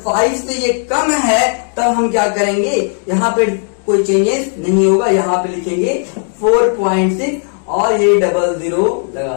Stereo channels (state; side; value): silent; right; 57 dB below the other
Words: 5 से ये कम है तब हम क्या करेंगे? यहाँ पे कोई चेंजेस नहीं होगा, यहाँ पे लिखेंगे 4.6 और ये 00